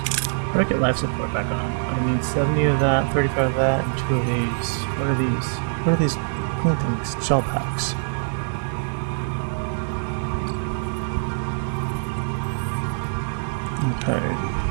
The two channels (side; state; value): left; silent; digital silence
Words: do I get life support back on? I need 70 of that, 35 of that, and 2 of these. What are these? What are these green things? Shell packs. Okay.